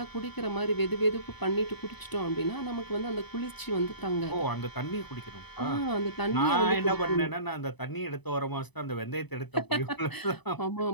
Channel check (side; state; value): right; late; 0.99 ms